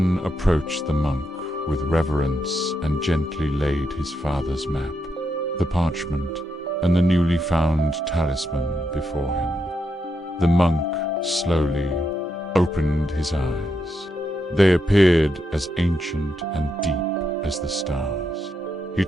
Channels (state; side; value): normal; both; correlation 0.82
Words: approached the monk with reverence and gently laid his father's map, the parchment, and the newly found talisman before him. The monk slowly opened his eyes. They appeared as ancient and deep as the stars. He